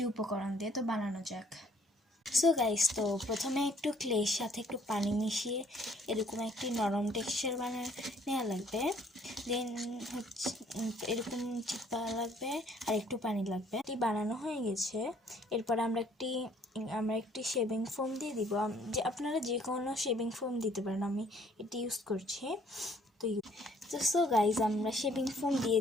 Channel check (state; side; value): normal; both; correlation 0.61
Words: উপকরণ দিয়ে। তো বানানো যাক। সো গাইস, তো প্রথমে একটু ক্লের সাথে একটু পানি মিশিয়ে এরকম একটি নরম টেক্সচার নেওয়া লাগবে। দেন হচ্ছে এরকম চিপা লাগবে আর একটু পানি লাগবে। এটি বানানো হয়ে গেছে। এরপর আমরা একটি শেভিং ফোম দিয়ে দিব। যে আপনারা যে কোনো শেভিং ফোম দিতে পারেন, আমি এটি ইউজ করছি। তো সো গাইজ, আমরা শেভিং ফোম দিয়ে